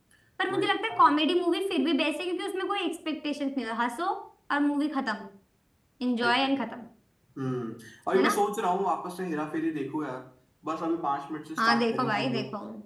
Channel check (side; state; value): both; identical; correlation 1.00